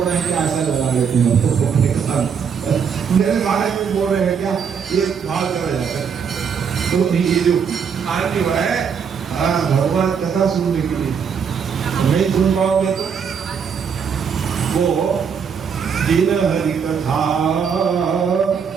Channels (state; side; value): quieter; left; 6.7 dB